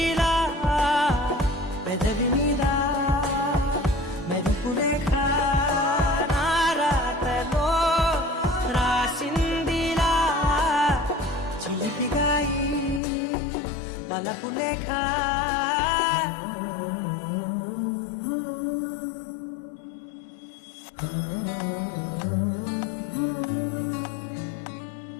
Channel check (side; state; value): right; drops out; at 13.0 s